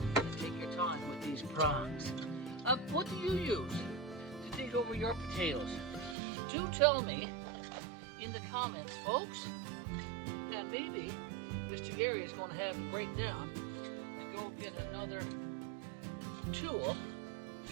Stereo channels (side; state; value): left; drops out; at 6.2 s